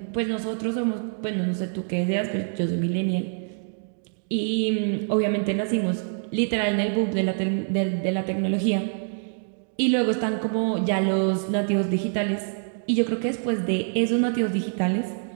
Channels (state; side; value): silent; left; digital silence